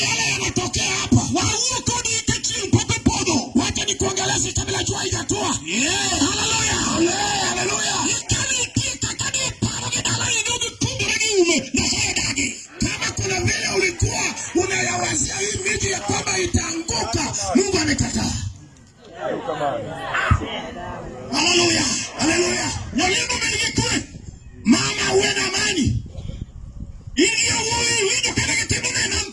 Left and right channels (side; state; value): both; identical; correlation 1.00